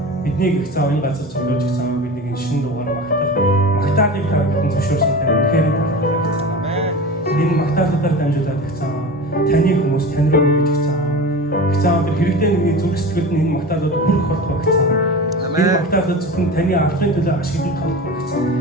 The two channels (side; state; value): both; normal; correlation 0.31